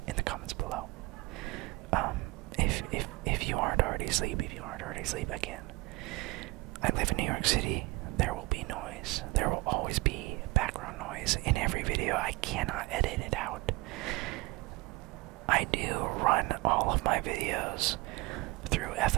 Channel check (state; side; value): quieter; left; 23.3 dB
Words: in the comments below. If you aren't already asleep, again, I live in New York City. There will be noise. There will always be background noise in every video. I cannot edit it out. I do run all of my videos through